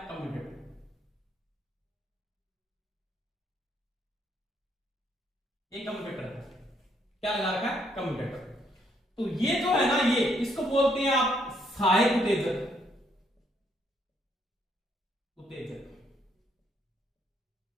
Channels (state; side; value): normal; both; correlation 0.71